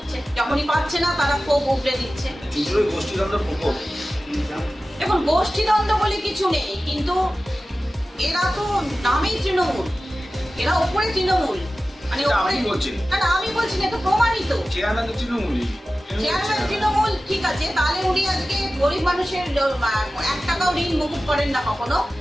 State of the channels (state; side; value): normal; both; correlation 0.95